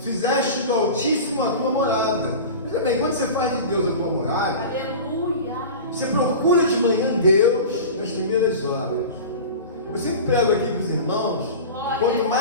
do Altíssimo a tua morada. Veja bem, quando você faz de Deus a tua morada, Aleluia. você procura de manhã Deus nas primeiras horas. Eu sempre prego aqui para os irmãos, quanto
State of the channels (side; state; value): both; inverted; correlation -0.33